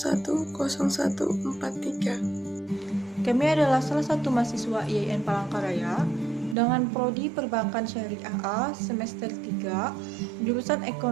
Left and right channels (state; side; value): drops out; left; at 6.6 s